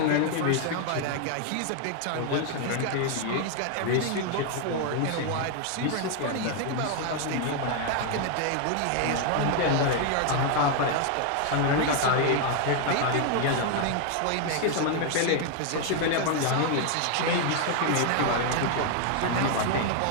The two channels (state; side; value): different; both; correlation 0.00